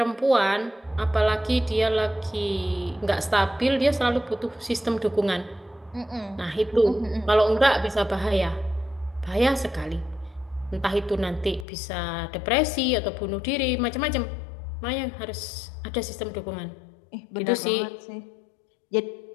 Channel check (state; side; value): drops out; right; at 11.7 s